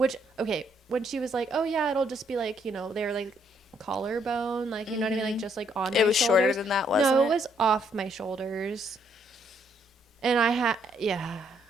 she was like, oh yeah, it'll just be like, you know, they were like collarbone, like, you know what I mean, like just like on my shoulders. It was shorter than that, wasn't it? No, it was off my shoulders. And I had,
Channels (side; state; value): both; normal; correlation 0.71